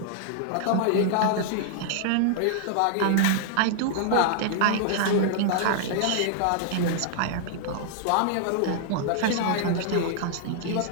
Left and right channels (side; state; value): both; different; correlation -0.01